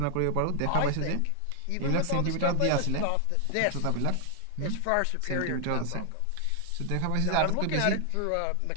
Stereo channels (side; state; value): both; different; correlation 0.00